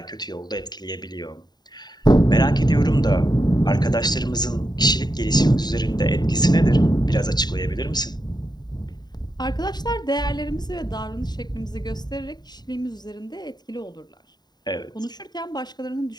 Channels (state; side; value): late; right; 0.20 ms